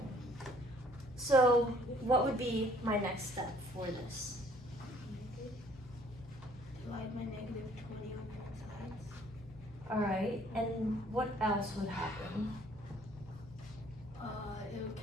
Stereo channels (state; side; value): normal; both; correlation 0.59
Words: So what would be my next step for this? Divide my negative 20 on both sides. All right, and what else would happen? It would